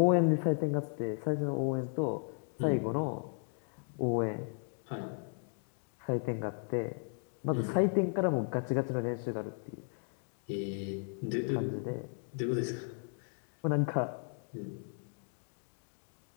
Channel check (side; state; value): right; silent; 54 dB below the other